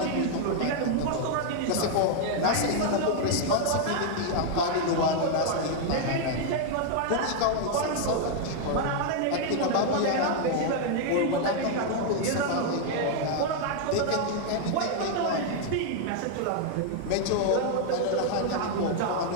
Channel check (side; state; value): both; different; correlation 0.00